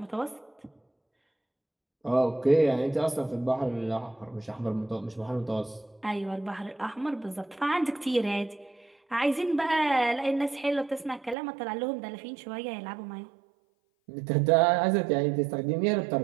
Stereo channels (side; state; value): left; drops out; at 11.4 s